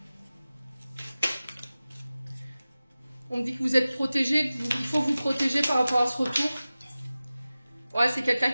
On me dit que vous êtes protégé, il faut vous protéger par rapport à ce retour. Ouais, c'est quelqu'un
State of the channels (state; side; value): inverted; both; correlation -0.97